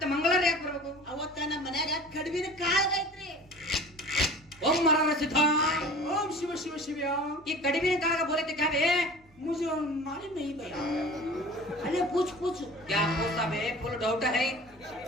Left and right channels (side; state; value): both; normal; correlation 0.41